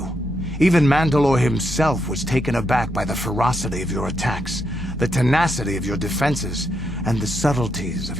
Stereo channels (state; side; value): normal; both; correlation 0.80